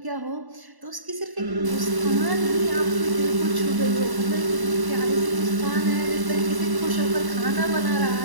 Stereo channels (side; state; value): left; late; 1.0 ms